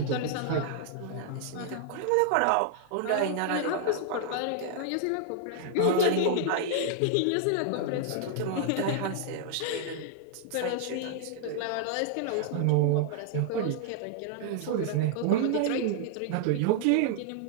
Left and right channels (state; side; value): different; both; correlation -0.01